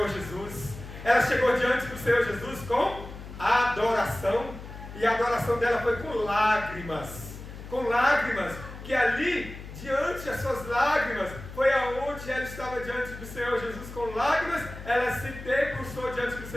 Jesus. Ela chegou diante do Senhor Jesus com adoração. E a adoração dela foi com lágrimas. Com lágrimas. Que ali, diante das suas lágrimas, foi aonde ela estava diante do Senhor Jesus com lágrimas. Ela se debruçou diante do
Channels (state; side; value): noise; left; hum, 13 dB below the sound